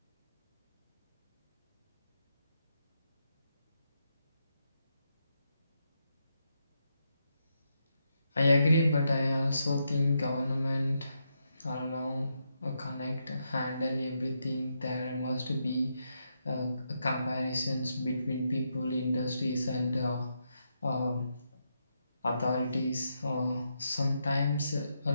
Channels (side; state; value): both; inverted; correlation -0.82